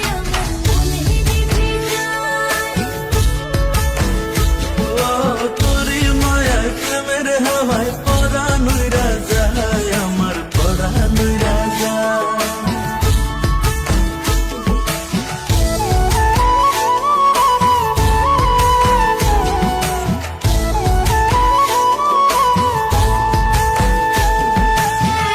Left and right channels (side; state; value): both; identical; correlation 1.00